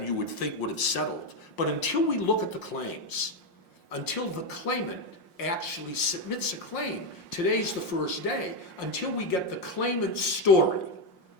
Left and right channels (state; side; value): late; right; 5.6 ms